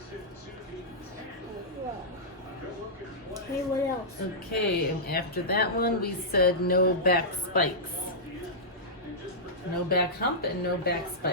Okay, what else? Okay, and after that one, we said no back spikes. No back hump and no back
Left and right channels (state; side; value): normal; both; correlation -0.13